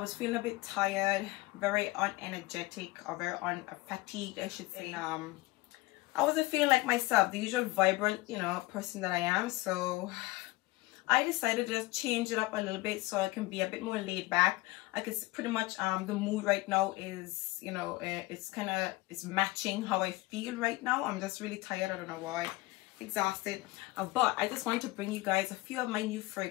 feeling a bit tired, very unenergetic, or very fatigued I should say. I wasn't feeling like myself, the usual vibrant, person that I am. So I decided to just change it up a little bit so I can be a bit more laid back. I can pretty much, the mood right now is, it's matching how I feel right now. I'm just really tired. I don't know why. Exhausted. But I just want to bring you guys a few of my new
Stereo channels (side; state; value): right; quieter; 20.9 dB